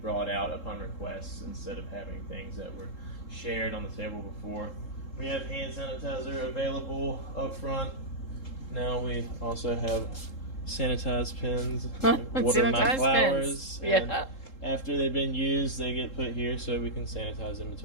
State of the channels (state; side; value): late; right; 3.7 ms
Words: brought out upon request instead of having things that were shared on the table before. We have hand sanitizer available up front. Now we also have sanitized pens, water my flowers, and after they've been used, they get put here so we can sanitize in